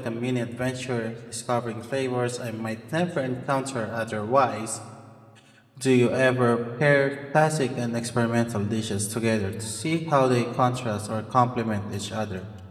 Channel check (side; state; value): both; identical; correlation 1.00